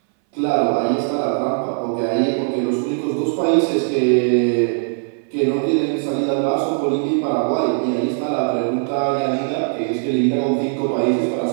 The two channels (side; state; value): left; silent; 61 dB below the other